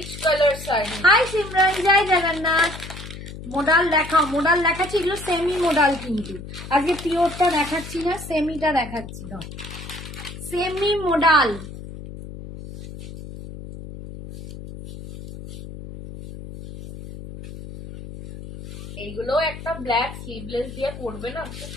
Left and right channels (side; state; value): left; noise; hum, 12 dB below the sound